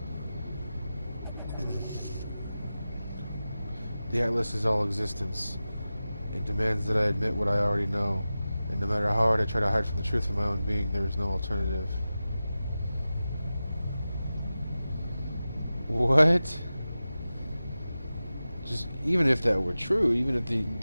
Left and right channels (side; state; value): both; inverted; correlation -0.94